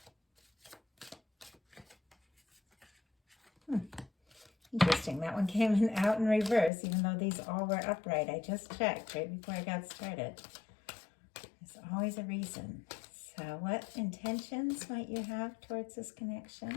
Interesting, that one came out in reverse, even though these all were upright. I just checked right before I got started. There's always a reason. So what intentions might you have towards this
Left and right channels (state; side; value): drops out; right; at 6.7 s